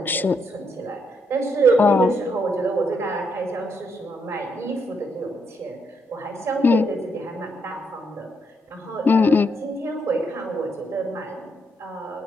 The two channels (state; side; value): normal; both; correlation 0.76